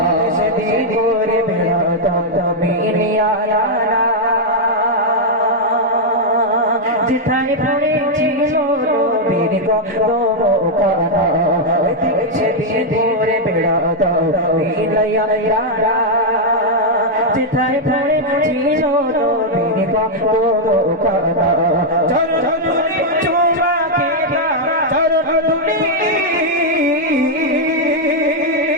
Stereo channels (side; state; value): both; normal; correlation -0.02